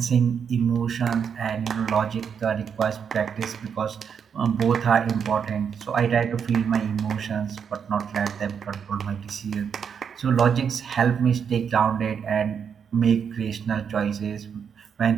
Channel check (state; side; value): quieter; left; 7.1 dB